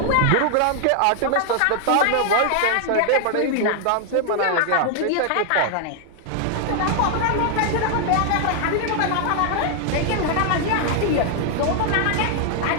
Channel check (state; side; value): different; both; correlation 0.00